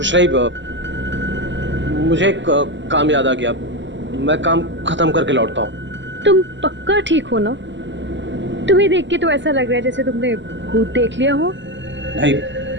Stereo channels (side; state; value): left; late; 0.54 ms